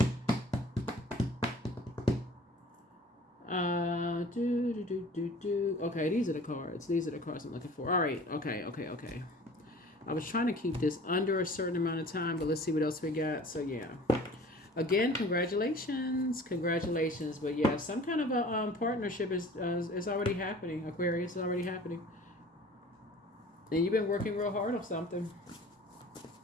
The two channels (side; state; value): both; normal; correlation 0.46